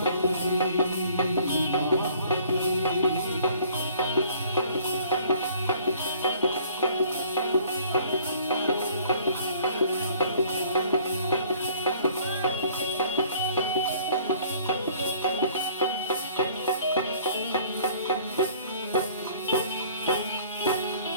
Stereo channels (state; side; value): inverted; both; correlation -0.55